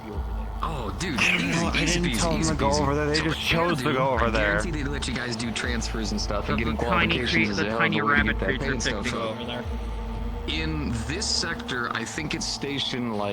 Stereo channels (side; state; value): both; identical; correlation 1.00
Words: over there. Oh, dude, I didn't tell them to go over there. They just chose to go over there. I guarantee they let you guys do transfers and stuff and getting qualifications. The tiny rabbit creature picked to go over there. In this sector, I think it's stationed